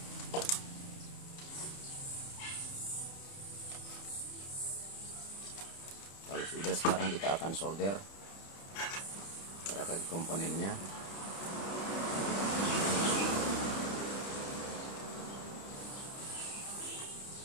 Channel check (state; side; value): late; right; 30 ms